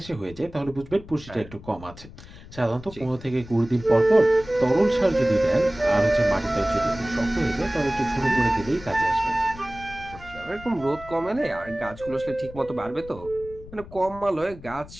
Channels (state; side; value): noise; left; rumble, 17 dB below the sound